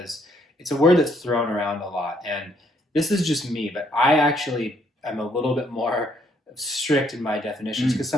it's a word that's thrown around a lot, and this is just me, but I actually am a little bit more strict in my definitions because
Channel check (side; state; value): both; normal; correlation 0.69